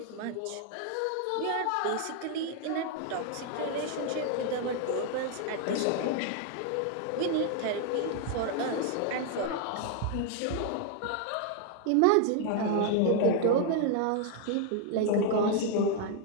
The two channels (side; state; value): both; different; correlation 0.00